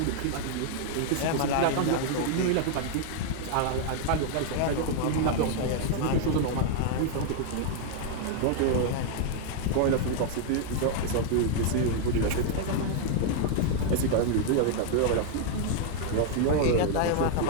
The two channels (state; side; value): different; both; correlation 0.00